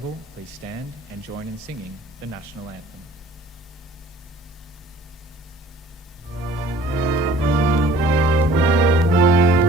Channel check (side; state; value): both; normal; correlation 0.51